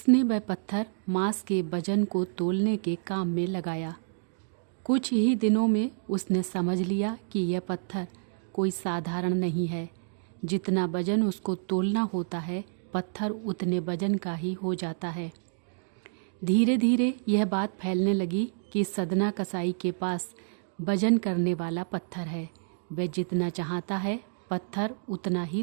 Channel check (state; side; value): silent; left; digital silence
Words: वह पत्थर मांस के वजन को तोलने के काम में लगाया। कुछ ही दिनों में उसने समझ लिया कि यह पत्थर कोई साधारण नहीं है। जितना वजन उसको तोलना होता है, पत्थर उतने वजन का ही हो जाता है। धीरे धीरे यह बात फैलने लगी कि सदना कसाई के पास वजन करने वाला पत्थर है। वह जितना चाहता है पत्थर उतना ही